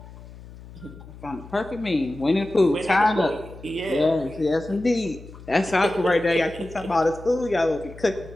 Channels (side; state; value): left; noise; hum, 17 dB below the sound